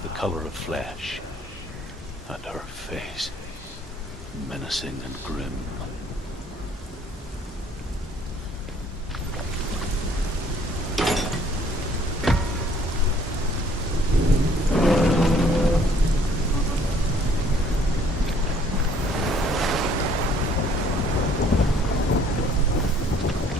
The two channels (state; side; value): normal; both; correlation 0.60